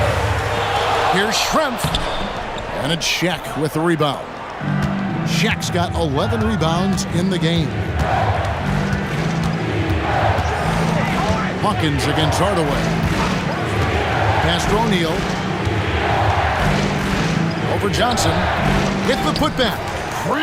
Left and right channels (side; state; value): both; identical; correlation 1.00